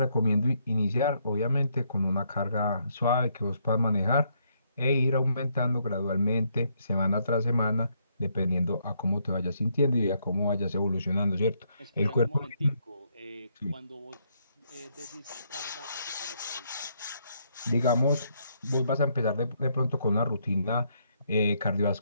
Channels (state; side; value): inverted; both; correlation -0.73